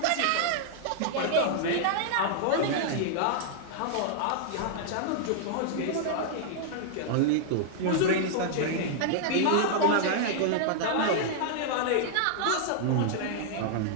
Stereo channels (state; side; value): different; both; correlation -0.01